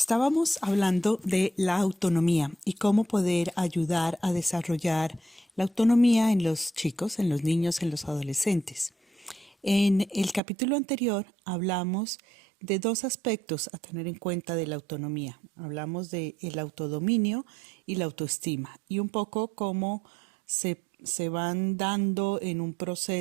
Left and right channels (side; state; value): left; drops out; at 10.4 s